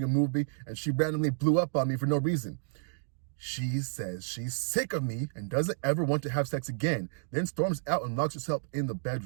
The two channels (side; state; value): left; silent; digital silence